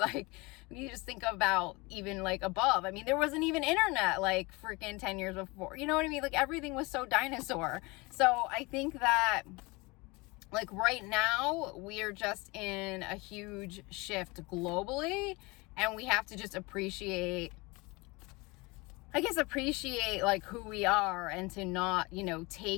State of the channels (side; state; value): right; quieter; 25.2 dB